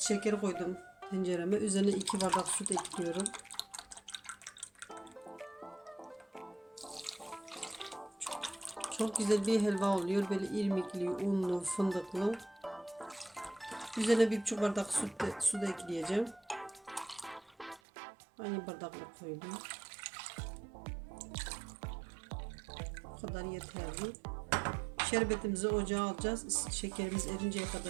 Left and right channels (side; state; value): left; drops out; at 17.8 s